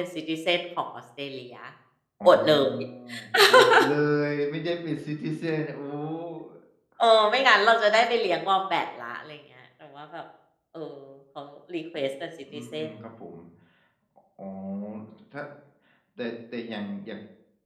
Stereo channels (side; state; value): both; identical; correlation 1.00